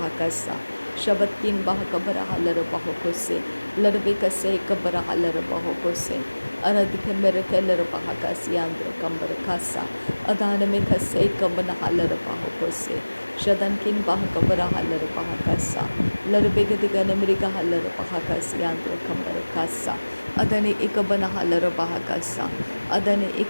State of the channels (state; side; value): inverted; both; correlation -1.00